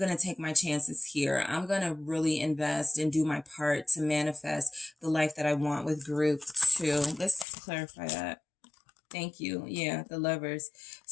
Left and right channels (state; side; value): drops out; right; at 7.5 s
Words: to take my chances here. I'm going to really invest and do my part to manifest the life that I want with group 2. Let's clarify that. Thank you. Yeah, the Lovers.